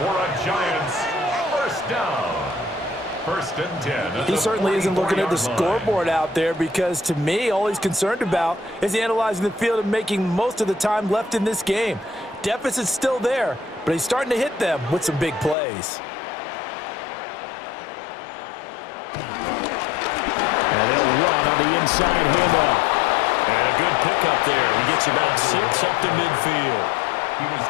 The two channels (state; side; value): drops out; right; at 15.6 s